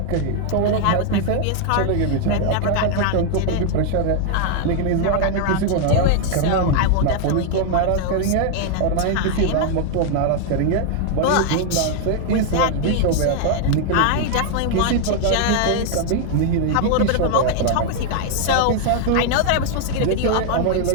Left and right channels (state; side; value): different; both; correlation 0.00